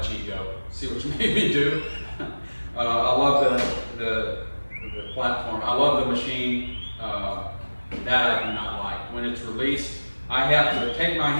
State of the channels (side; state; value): both; inverted; correlation -1.00